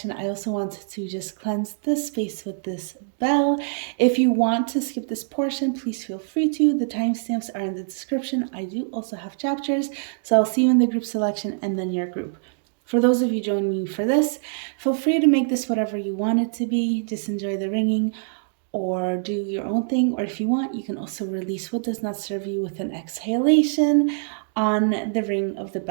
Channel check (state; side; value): silent; left; digital silence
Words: I also want to just cleanse this space with this bell. If you want to skip this portion, please feel free to. The timestamps are in the description. I do also have chapters, so I'll see you in the group selection and then your group. For those of you joining me for this, feel free to make this whatever you want it to be. Just enjoy the ringing or do your own thing. Or if you want, you can also release what does not serve you with an exhalation on the ring of the